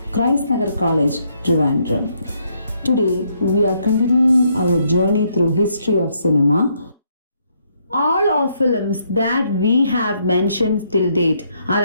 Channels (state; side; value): inverted; both; correlation -0.73